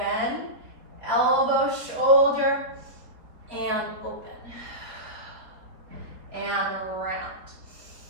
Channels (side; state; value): left; late; 4.0 ms